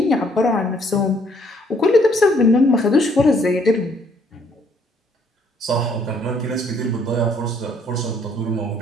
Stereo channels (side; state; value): both; normal; correlation 0.65